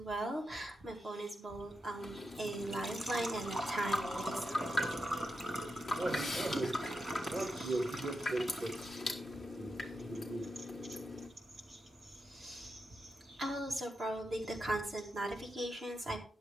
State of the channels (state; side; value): normal; both; correlation 0.86